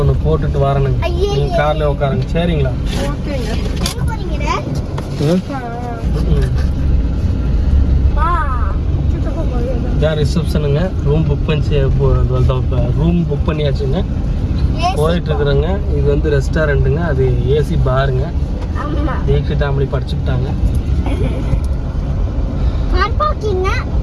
போட்டுட்டு வரணுங்க. நீங்கள் காரில் உட்காருங்க. சரிங்களா? இதான் ரிசப்ஷனுங்க. Room book பண்ணியாச்சுங்க. போயிட்டு இருக்கிறேங்க. இது வந்து ரெஸ்டாரண்ட்டுங்க, அது ஏசி பாருங்க. தீக்ஷித் அப்படி படிச்சுட்டாங்க.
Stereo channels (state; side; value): identical; both; correlation 1.00